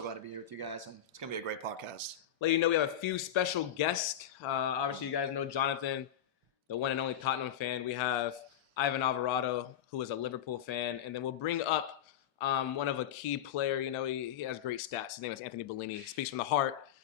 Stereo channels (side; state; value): right; quieter; 9.9 dB